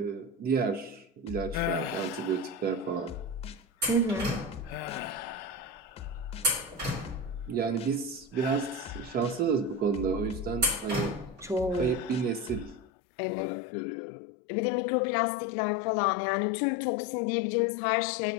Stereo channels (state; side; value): drops out; right; at 12.9 s